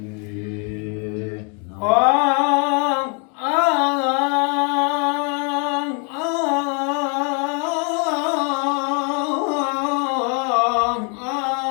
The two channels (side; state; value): right; quieter; 38.1 dB